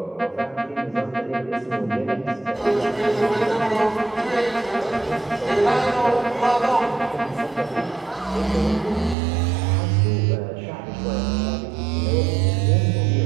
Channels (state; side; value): drops out; left; at 9.2 s